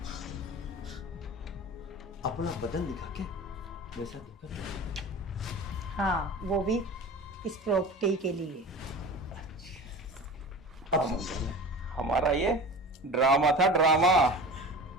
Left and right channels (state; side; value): normal; both; correlation 0.35